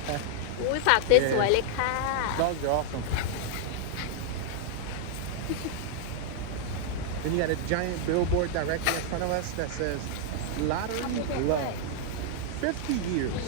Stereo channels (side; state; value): both; different; correlation 0.00